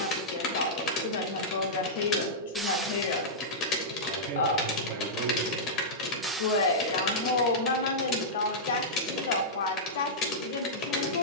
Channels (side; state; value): both; normal; correlation -0.12